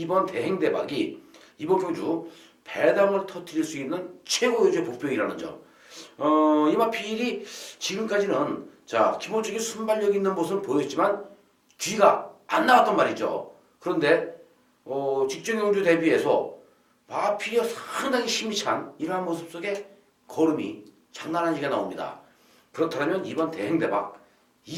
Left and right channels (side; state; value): both; identical; correlation 1.00